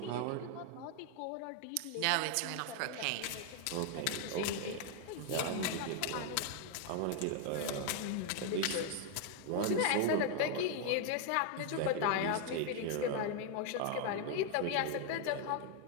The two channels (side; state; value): both; different; correlation 0.00